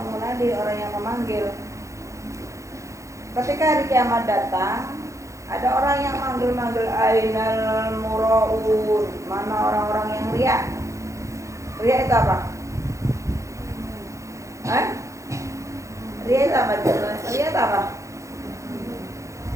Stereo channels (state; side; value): late; left; 0.15 ms